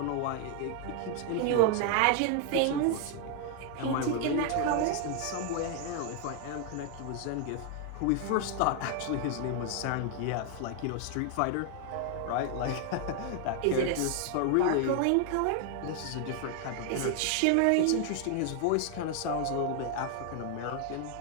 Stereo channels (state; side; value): different; both; correlation 0.00